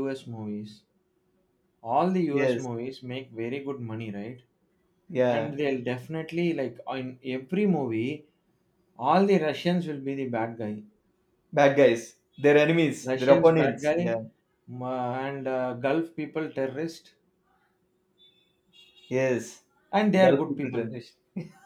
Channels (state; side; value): identical; both; correlation 1.00